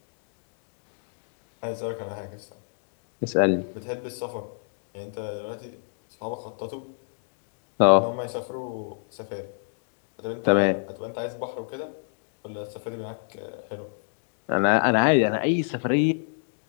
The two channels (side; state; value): right; silent; digital silence